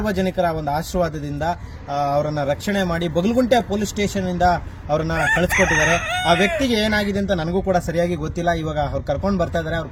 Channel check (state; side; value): identical; both; correlation 1.00